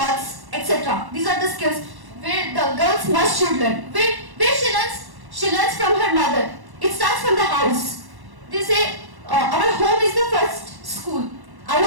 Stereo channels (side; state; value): left; late; 1.1 ms